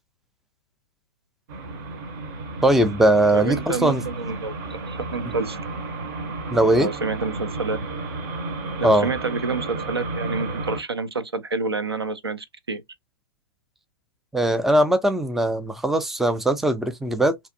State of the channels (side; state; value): both; normal; correlation 0.52